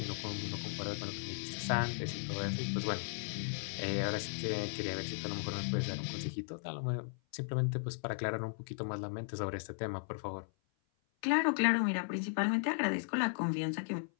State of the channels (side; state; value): right; silent; 53 dB below the other